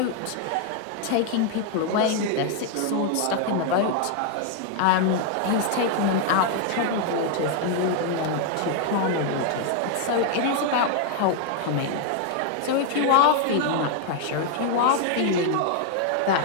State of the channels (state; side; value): different; both; correlation 0.00